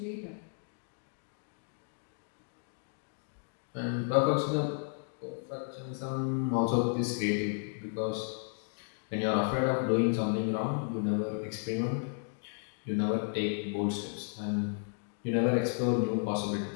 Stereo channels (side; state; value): right; silent; 56 dB below the other